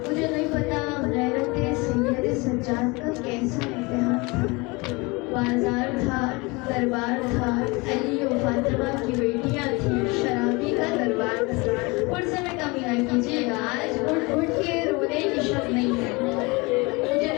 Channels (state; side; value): quieter; right; 26.1 dB